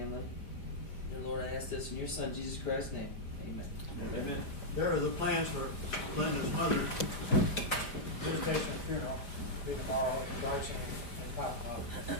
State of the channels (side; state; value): right; late; 5.0 ms